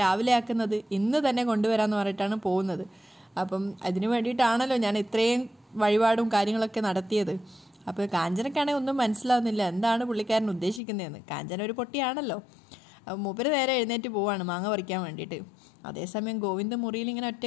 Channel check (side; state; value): right; drops out; at 10.8 s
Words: രാവിലെ ആക്കുന്നത്, ഇന്ന് തന്നെ കൊണ്ടുവരാമെന്ന് പറഞ്ഞിട്ടാണ് പോകുന്നത്. അപ്പം അതിന് വേണ്ടിയിട്ടാണല്ലോ ഞാൻ ഇത്രയും വഴിപാടും കാര്യങ്ങളൊക്കെ നടത്തിയത്. അപ്പോൾ കാഞ്ചനക്കാണെങ്കിൽ ഒന്നും മനസ്സിലാവുന്നില്ല എന്താണ് പുള്ളിക്കാരൻ ഉദ്ദേശിക്കുന്നതെന്ന്. കാഞ്ചന ഒരു പൊട്ടിയാണല്ലോ. മൂപ്പര് നേരെ എഴുന്നേറ്റ് പോവാണ് മാങ്ങ പറിക്കാൻ വേണ്ടിയിട്ട്. അതേസമയം ഗോവിന്ദ മുറിയിൽ ഇങ്ങനെ